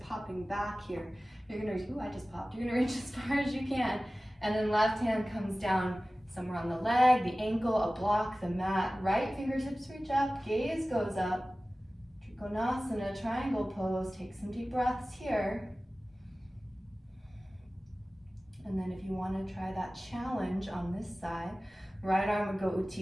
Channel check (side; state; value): both; normal; correlation 0.97